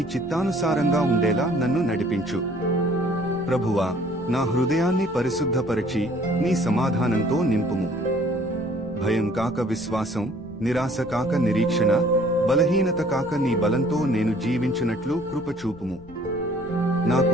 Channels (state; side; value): noise; left; rumble, 20 dB below the sound